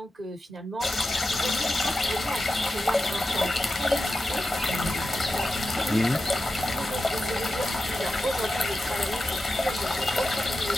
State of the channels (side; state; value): both; normal; correlation 0.91